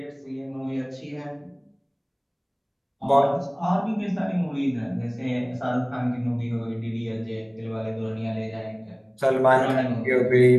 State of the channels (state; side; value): identical; both; correlation 1.00